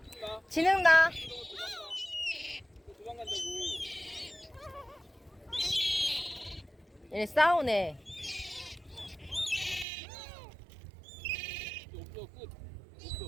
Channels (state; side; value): drops out; left; at 9.9 s